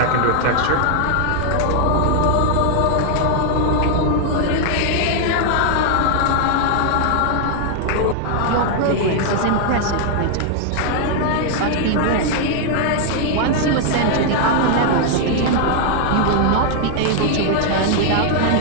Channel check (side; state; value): both; different; correlation 0.00